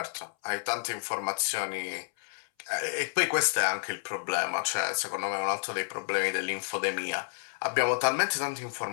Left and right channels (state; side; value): silent; right; 58 dB below the other